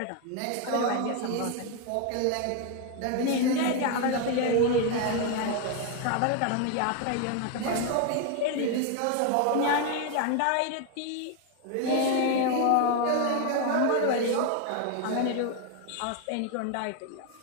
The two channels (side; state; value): both; different; correlation 0.01